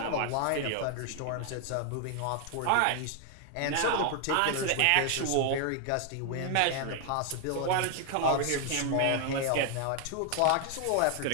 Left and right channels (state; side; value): different; both; correlation 0.00